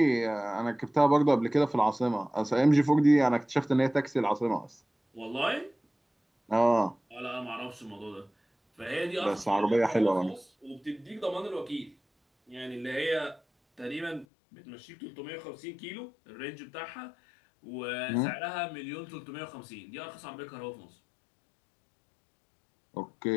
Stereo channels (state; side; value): drops out; right; at 14.2 s